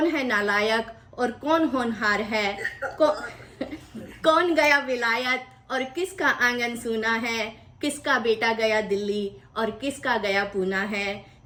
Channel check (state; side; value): identical; both; correlation 1.00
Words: है नालायक और कौन होनहार है। कौन गया विलायत और किसका आंगन सूना है। किसका बेटा गया दिल्ली और किसका गया पूना है।